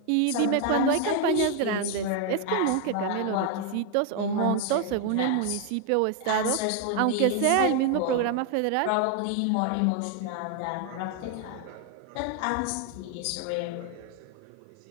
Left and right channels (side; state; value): both; different; correlation 0.01